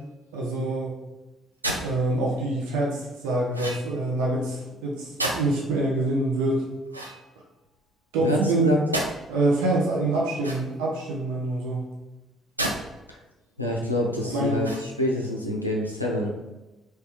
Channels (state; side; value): normal; both; correlation 0.48